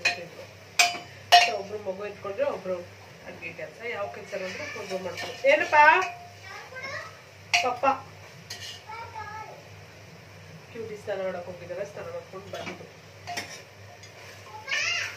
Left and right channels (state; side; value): identical; both; correlation 1.00